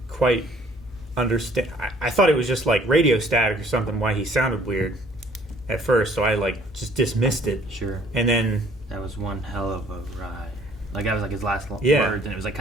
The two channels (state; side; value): normal; both; correlation 0.57